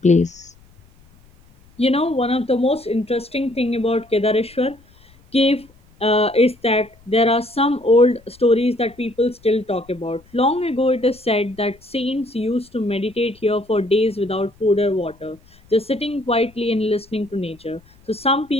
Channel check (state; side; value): noise; left; rumble, 29 dB below the sound